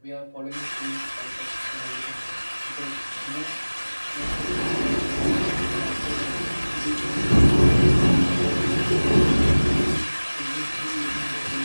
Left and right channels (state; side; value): inverted; both; correlation -1.00